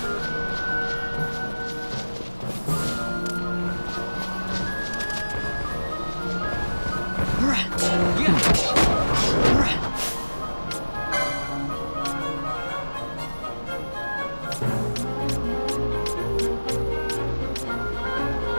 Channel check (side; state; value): both; inverted; correlation -1.00